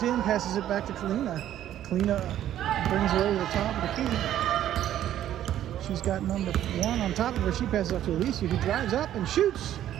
in, passes it back to Kalina. Kalina brings her over the top of the key. She's got number 1 on top of her. She passes off to Alicia, who drives up and shoots.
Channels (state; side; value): quieter; left; 11.8 dB